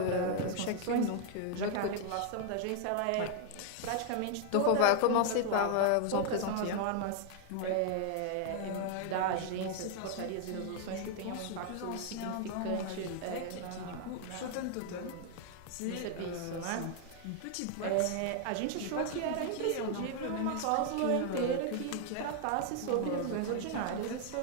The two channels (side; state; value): both; different; correlation 0.00